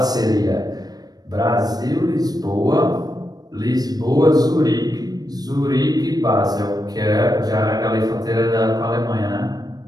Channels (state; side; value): late; left; 0.19 ms